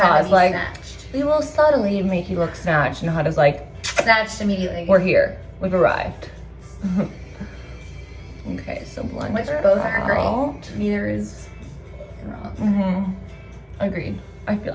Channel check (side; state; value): both; identical; correlation 1.00